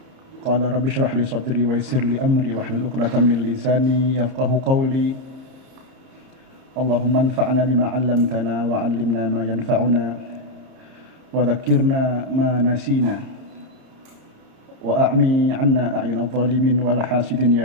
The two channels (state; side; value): late; left; 30 ms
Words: Qala rabbi shrah li sadri wa yassir li amri wahlul 'uqdatam min lisani yafqahu qawli. Allahumma anfa'na bima 'allamtana wa 'allimna ma yanfa'una wa dhakkirna ma nasina wa a'mi 'anna a'yunadh dhalimin wal hasidin ya